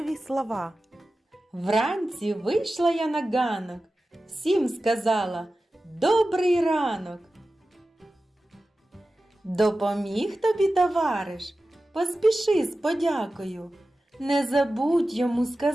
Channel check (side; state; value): both; normal; correlation 0.94